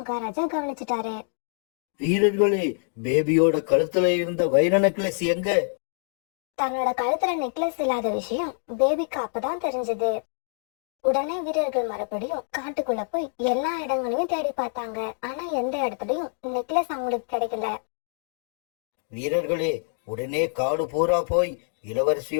கவனிச்சுட்டாரு. வீரர்களே, பேபியோட கழுத்துல இருந்த வைர நெக்லஸ் எங்க? தன்னோட கழுத்துல நெக்லஸ் இல்லாத விஷயம் பேபிக்கு அப்பதான் தெரிஞ்சது. உடனே வீரர்கள் மறுபடியும் காட்டுக்குள்ள போய் எல்லா இடங்களையும் தேடி பார்த்தாங்க. ஆனா எந்த இடத்துலயும் நெக்லஸ் அவங்களுக்கு கிடைக்கல. வீரர்களே, உடனே காடு பூரா போய்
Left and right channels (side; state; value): right; silent; digital silence